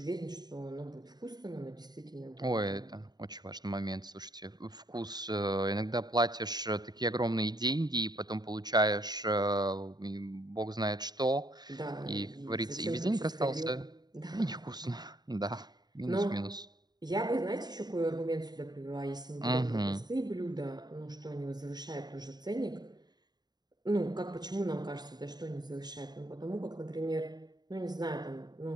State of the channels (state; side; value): late; left; 0.20 ms